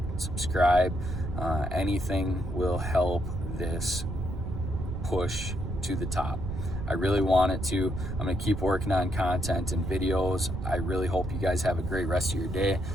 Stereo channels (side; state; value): right; noise; rumble, 5 dB below the sound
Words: subscribe. Anything will help this push to the top. I really want it to. I'm going to keep working on content and videos. I really hope you guys have a great rest of your day.